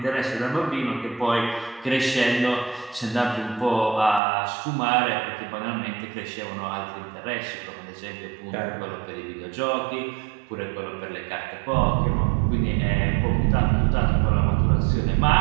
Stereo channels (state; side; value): drops out; left; at 4.2 s